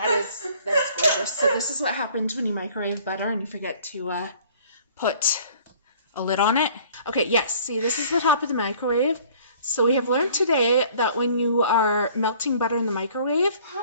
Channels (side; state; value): both; inverted; correlation -0.54